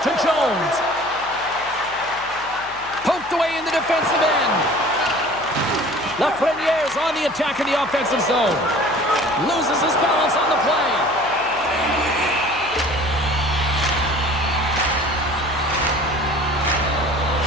to Jones. Poked away in the defensive end. Lafreniere's on the attack in the offensive zone. Loses his balance on the play.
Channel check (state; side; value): noise; left; hum, 22 dB below the sound